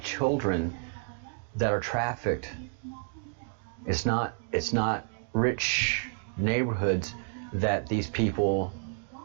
children that are trafficked. It's not rich neighborhoods that these people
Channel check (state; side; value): silent; left; 58 dB below the other